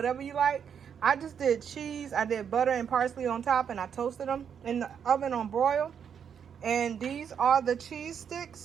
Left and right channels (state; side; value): quieter; left; 7.7 dB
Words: you like. I just did cheese. I did butter and parsley on top. And I toasted them in the oven on broil. And these are the cheese